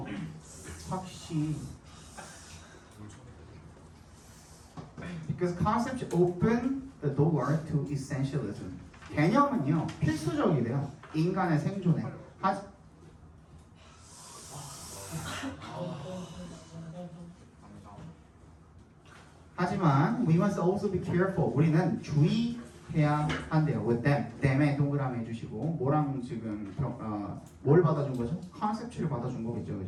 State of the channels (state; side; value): identical; both; correlation 1.00